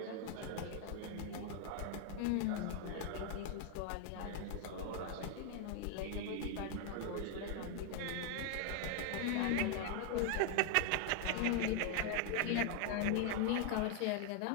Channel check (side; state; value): both; different; correlation 0.00